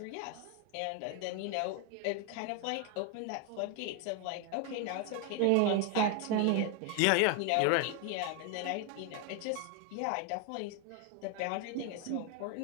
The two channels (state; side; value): different; both; correlation 0.01